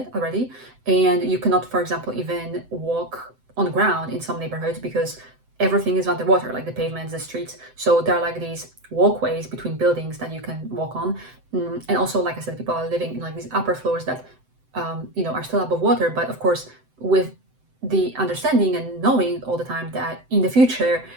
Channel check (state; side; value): late; left; 7.8 ms